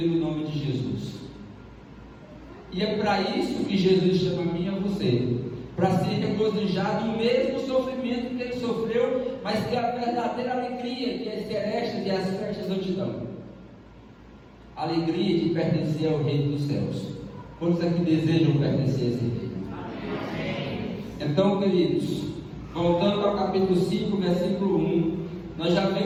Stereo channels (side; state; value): both; identical; correlation 1.00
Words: nome de Jesus. E é para isso que Jesus chama a mim e a você, para se regozijar do mesmo sofrimento que ele sofreu, mas que é a verdadeira alegria que as celestes e as festas não te dão. A alegria de pertencer ao reino dos céus. Quantos aqui desejam pertencer a esse reino? Então, queridos, voltando ao capítulo 5, versículo 1, nós já